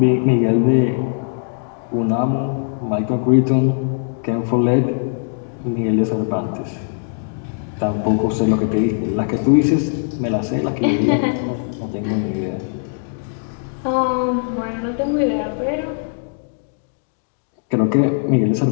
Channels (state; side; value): silent; right; digital silence